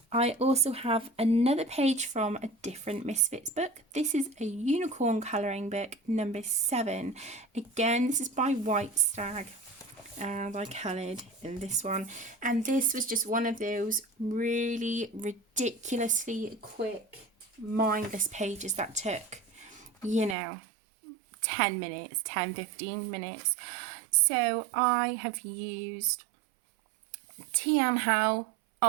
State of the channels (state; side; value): drops out; left; at 20.4 s